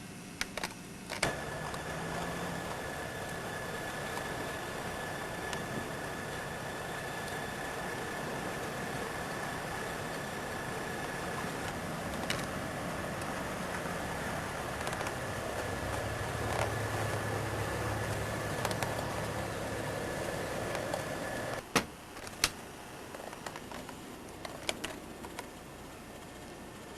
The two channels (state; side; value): identical; both; correlation 1.00